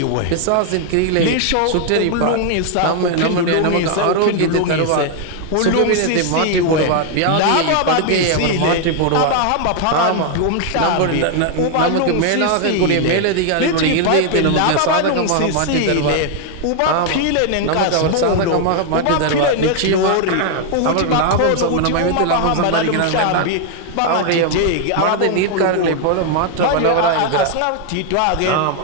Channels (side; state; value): both; different; correlation 0.00